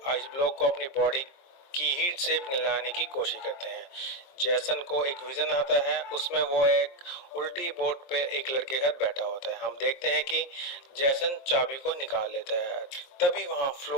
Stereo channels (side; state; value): right; late; 23 ms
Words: आइस ब्लॉक को अपनी बॉडी की हीट से पिघलाने की कोशिश करते हैं। जैसन को एक विजन आता है, उसमें वो एक उल्टी बोट पे एक लड़के के साथ बैठा होता है। हम देखते हैं कि जैसन चाबी को निकाल लेता है, तभी वहां